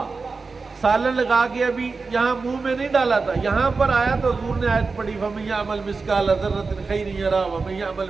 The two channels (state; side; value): quieter; left; 4.3 dB